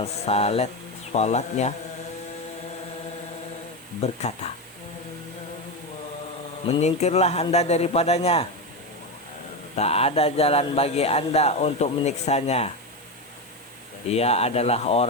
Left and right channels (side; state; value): both; normal; correlation 0.15